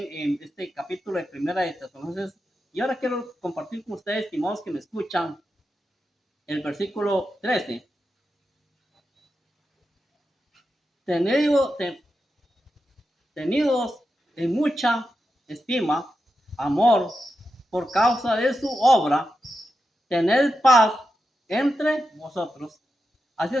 en este capítulo de Primera de Tesalonicenses, y ahora quiero compartir con ustedes, estimados que me escuchan, el versículo 13. Tenidos en mucha estima, amor, por causa de su obra, tened paz entre vosotros. Así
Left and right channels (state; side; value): normal; both; correlation 0.88